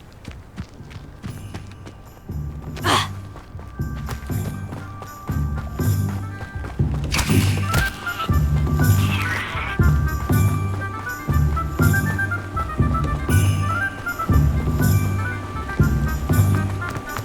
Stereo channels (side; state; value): both; identical; correlation 1.00